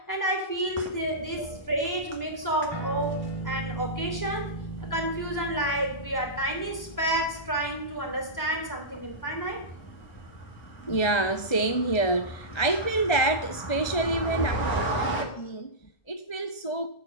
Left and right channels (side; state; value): right; late; 1.3 ms